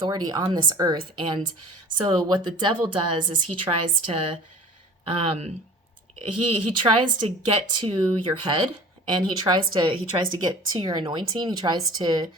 on this earth. And so what the devil does is he tries to he tries to get to your head, and he tries to get to your anointing. He tries to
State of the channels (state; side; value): normal; both; correlation 0.43